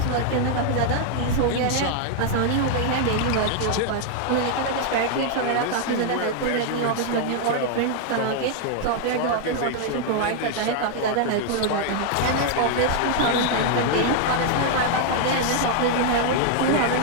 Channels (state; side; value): different; both; correlation 0.00